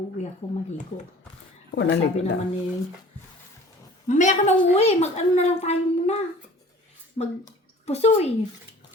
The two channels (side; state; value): both; normal; correlation 0.47